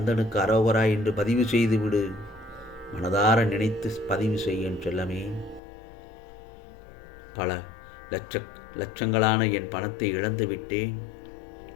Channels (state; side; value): drops out; right; at 5.6 s